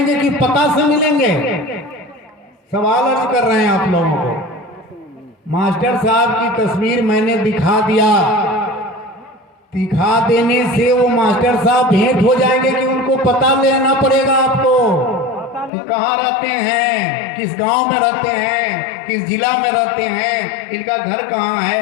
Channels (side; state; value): right; drops out; at 15.7 s